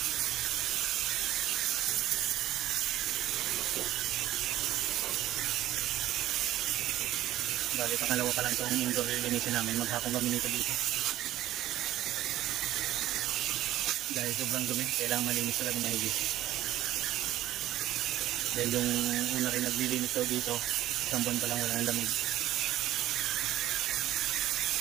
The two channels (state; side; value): quieter; left; 14.0 dB